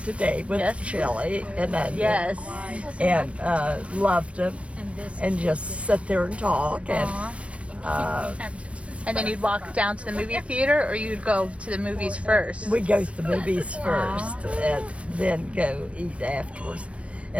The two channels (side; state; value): left; late; 0.062 ms